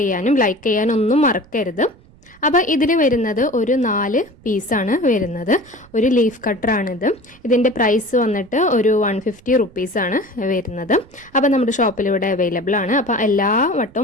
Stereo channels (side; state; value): right; noise; rumble, 26 dB below the sound